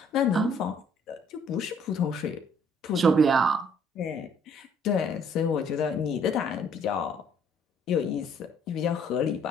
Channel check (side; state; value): both; normal; correlation 0.62